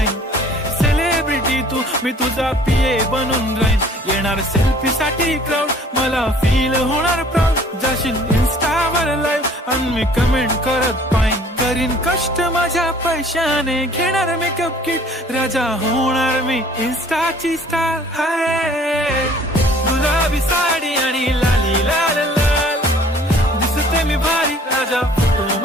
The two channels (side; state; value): both; normal; correlation 0.54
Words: सेलिब्रिटी तू मी तुझा पीए बनून राहीन. येणार सेल्फी साठी क्राऊड मला फील होणार प्राऊड. जाशील इन्स्टावर लाईव्ह आणि मी कमेंट करत पाईन. करीन कष्ट माझ्या पैशाने घेणार मेकअप किट. राजा होणार मी इन्स्टाची स्टार. हाय गुलाबी साडी आणि लाली लाल लाल, दिसते मी भारी राजा फोटो